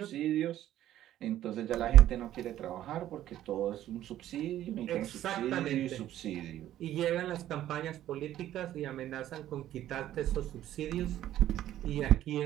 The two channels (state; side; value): quieter; left; 12.7 dB